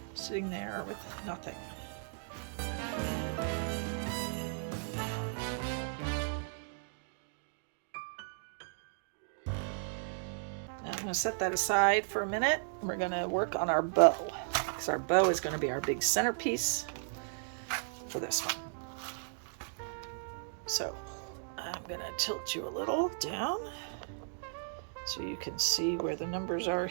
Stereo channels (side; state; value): left; silent; digital silence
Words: sitting there with nothing. Now I'm going to set that aside for a minute. We're going to work on our bow, because our bow is going to be our big centerpiece for this one. So I'm going to tilt you a little down so you can see where the numbers are